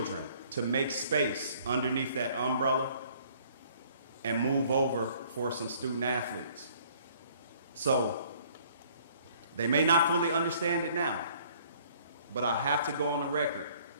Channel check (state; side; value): inverted; both; correlation -0.58